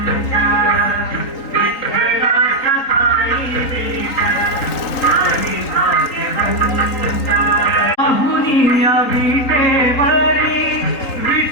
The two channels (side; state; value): right; late; 3.9 ms